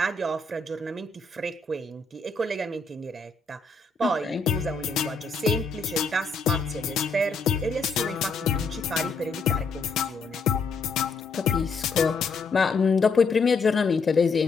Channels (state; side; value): quieter; right; 4.1 dB